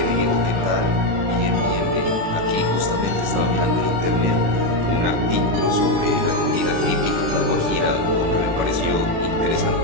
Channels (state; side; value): late; left; 36 ms